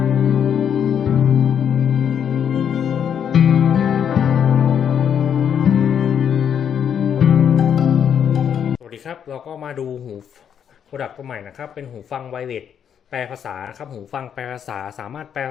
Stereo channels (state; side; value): quieter; right; 8.4 dB